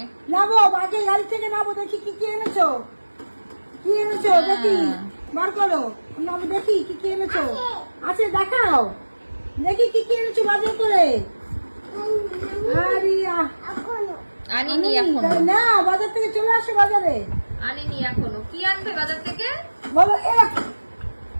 নামো বাজে গাড়ি থেকে নামো দেখি কি কি এনেছো কি এনেছো দেখি বার করো নামো দেখি কি কি এনেছো আছে দেখাও দেখি কি কি এনেছো বাজার করে আরে আনিনি এখনো না বাজার থেকে চলে আসো বাজারে আনিনি এখনো কি আনবে বাজার থেকে বলো এফ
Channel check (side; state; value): both; inverted; correlation -1.00